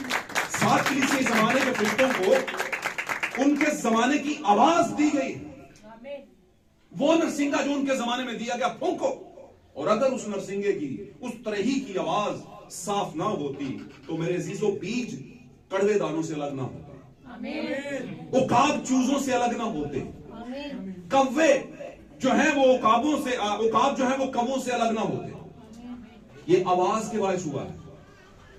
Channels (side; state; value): both; identical; correlation 1.00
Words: 7 कलीसियाई जमाने के फरिश्तों को, उनके जमाने की आवाज दी गई। वो नरसिंगा जो उनके जमाने में दिया गया, फूंको। और अगर उस नरसिंगे की, उस तरही की आवाज साफ ना होती तो मेरे अजीजों, बीज कड़वे दानों से अलग ना होते, उकाब चूजों से अलग ना होते, कव्वे जो है वो उकाबों से, उकाब जो है वो कवों से अलग ना होते। ये आवाज के बायस हुआ है।